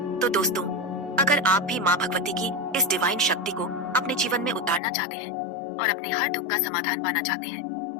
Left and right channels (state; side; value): drops out; right; at 4.8 s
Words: तो दोस्तों, अगर आप भी माँ भगवती की इस डिवाइन शक्ति को अपने जीवन में उतारना चाहते हैं और अपने हर दुख का समाधान पाना चाहते हैं